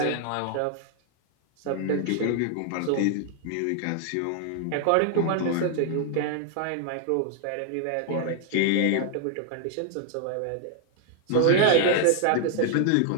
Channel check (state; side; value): different; both; correlation 0.00